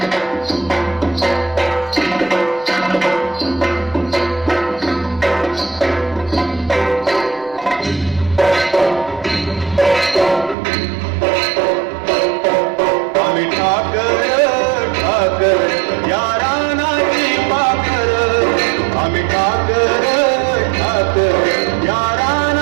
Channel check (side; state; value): left; drops out; at 10.6 s